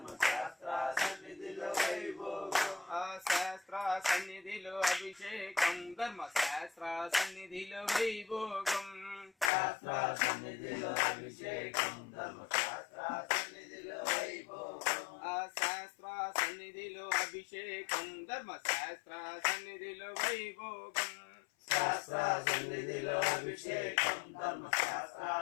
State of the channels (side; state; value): right; drops out; at 9.5 s